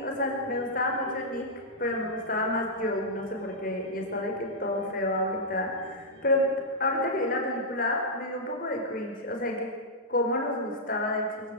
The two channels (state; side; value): normal; both; correlation -0.09